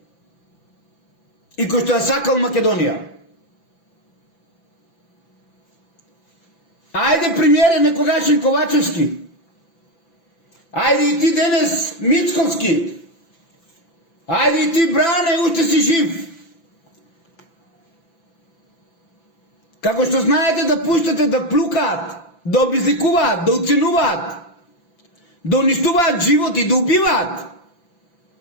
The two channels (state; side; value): late; right; 5.9 ms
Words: и кој што ја сакал Македонија. Ајде, премиере некогашен Ковачевски, ајде и ти денес Мицковски, ајде и ти Бране, уште си жив. Како што знаете да пуштате да плукаат, да обезликуваат, да уценуваат, да уништуваат животи, да убиваат.